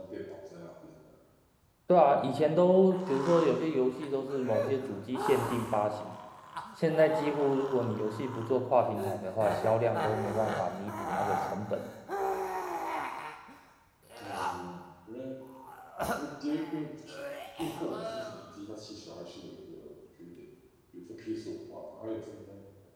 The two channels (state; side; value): identical; both; correlation 1.00